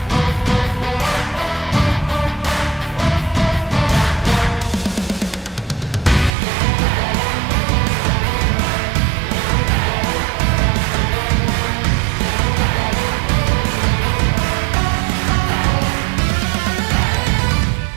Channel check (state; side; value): drops out; left; at 6.3 s